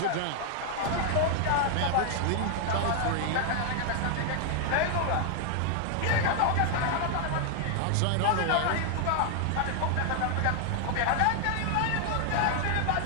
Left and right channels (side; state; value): both; different; correlation 0.00